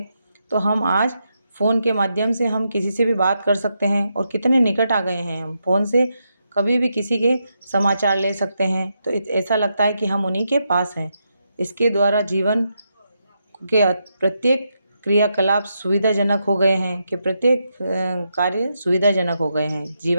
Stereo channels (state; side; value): inverted; both; correlation -0.83